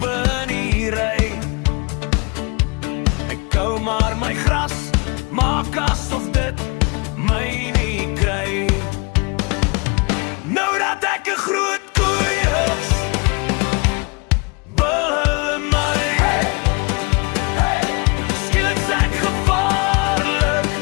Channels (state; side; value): quieter; right; 30.4 dB